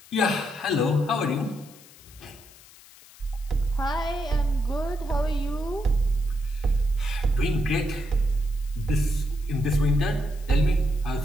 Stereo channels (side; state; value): left; noise; hiss, 23 dB below the sound